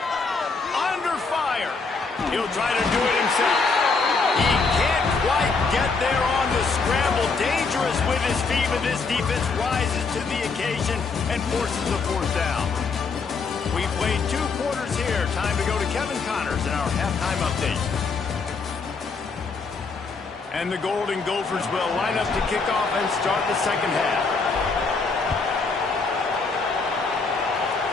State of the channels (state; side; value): quieter; right; 4.5 dB